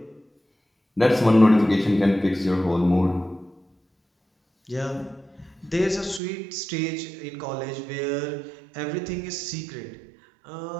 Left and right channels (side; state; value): left; drops out; at 6.2 s